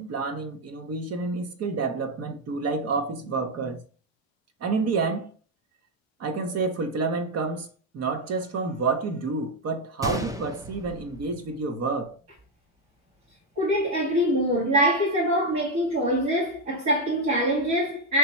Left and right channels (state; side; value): normal; both; correlation 0.04